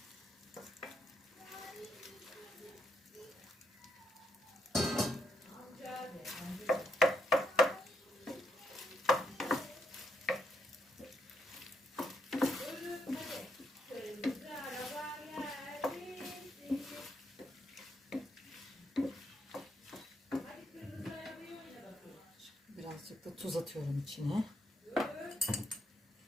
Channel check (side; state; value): both; normal; correlation 0.77